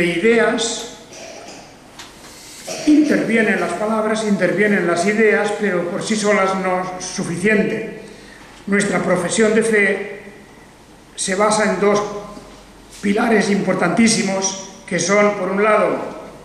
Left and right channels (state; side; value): identical; both; correlation 1.00